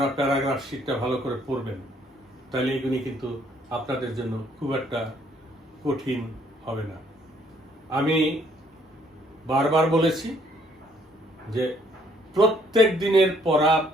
প্যারাগ্রাফ শীটটা ভালো করে পড়বেন, তাহলে এগুলি কিন্তু আপনাদের জন্য খুব একটা কঠিন হবে না। আমি বারবার বলেছি যে প্রত্যেক দিনের পড়া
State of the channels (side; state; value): both; normal; correlation 0.65